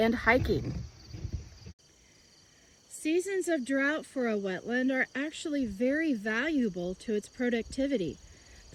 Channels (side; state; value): both; identical; correlation 1.00